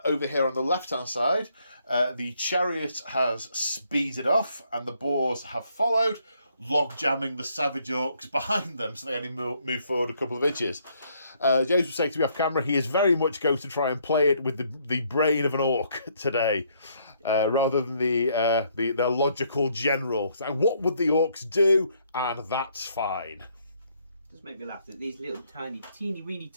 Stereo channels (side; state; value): both; inverted; correlation -0.70